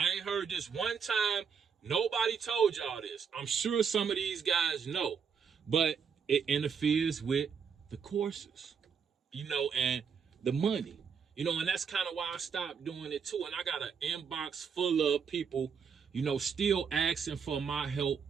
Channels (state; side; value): quieter; left; 6.6 dB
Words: ain't heard this one time. Nobody told y'all this. I'm sure some of these guys know, but it interferes with the courses, and the money, and that's kind of why I stopped doing it too. And I got an inbox full of people, still asking for my help